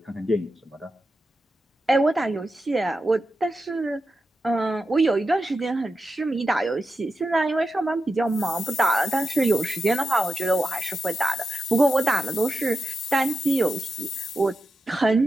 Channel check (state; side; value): normal; both; correlation 0.89